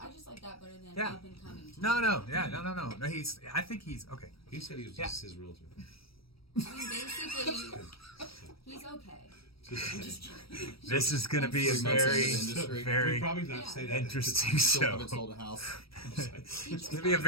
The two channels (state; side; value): late; right; 0.75 ms